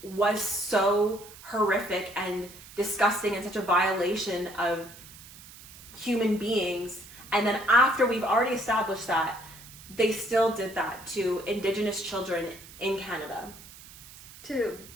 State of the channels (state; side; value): noise; right; hiss, 18 dB below the sound